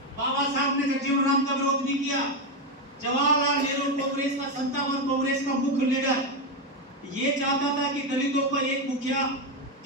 बाबा साहब ने जगजीवन राम का विरोध नहीं किया। जवाहरलाल नेहरू कांग्रेस का संतावन, कांग्रेस का मुख्य लीडर, ये चाहता था कि दलितों का एक मुखिया,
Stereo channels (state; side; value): normal; both; correlation 0.09